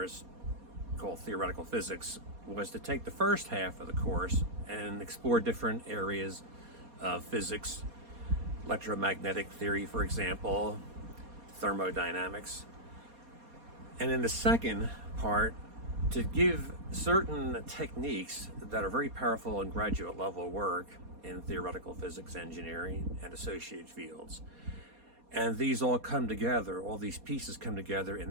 called Theoretical Physics, was to take the first half of the course and explore different areas of physics, electromagnetic theory, for example, thermodynamics. And in the second part, to give certain techniques that are very powerful in graduate level work in theoretical physics, engineering, and associated fields. And these all come together, all these pieces come together in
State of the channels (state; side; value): late; left; 4.2 ms